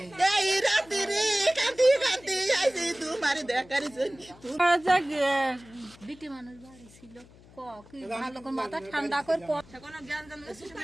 এই রাতে রে কাঁদি কাঁদি আইছে তোমার দেখার জন্য বিটি মানুষ বাড়ি ছিল কি ভালো করে মাথা ঠান্ডা করে কোনো জ্ঞান জান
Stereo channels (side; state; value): left; noise; hum, 23 dB below the sound